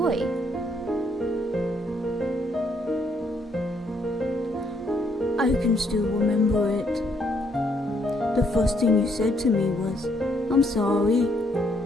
I can still remember it. The first thing you said to me was, "I'm sorry."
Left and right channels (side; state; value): both; normal; correlation 0.71